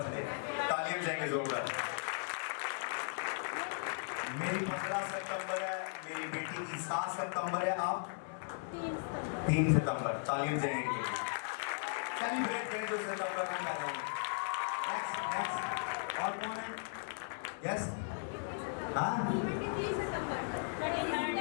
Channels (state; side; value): silent; right; digital silence